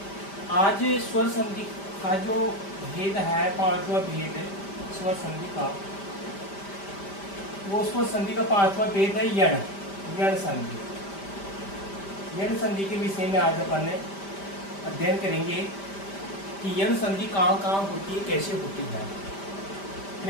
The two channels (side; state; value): right; late; 5.1 ms